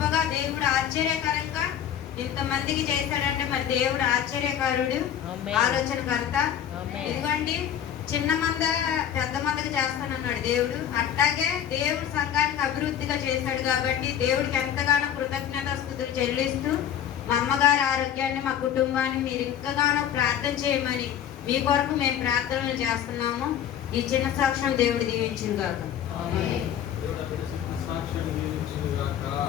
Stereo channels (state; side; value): quieter; right; 9.7 dB